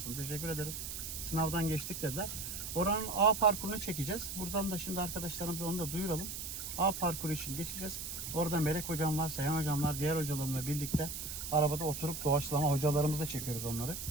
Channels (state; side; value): noise; right; hiss, 6 dB below the sound